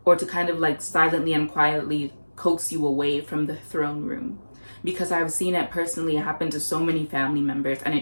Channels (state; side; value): inverted; both; correlation -1.00